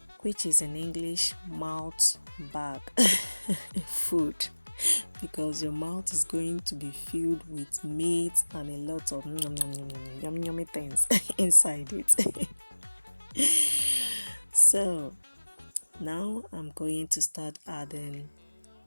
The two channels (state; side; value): inverted; both; correlation -1.00